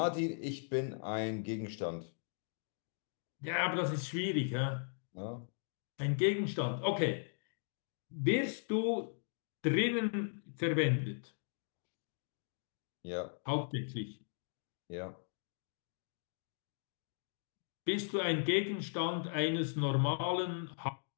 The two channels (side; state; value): right; silent; digital silence